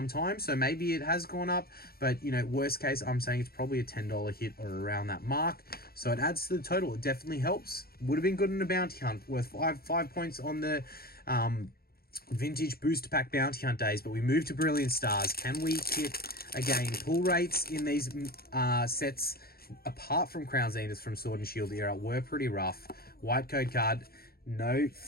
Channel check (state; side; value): late; right; 0.44 ms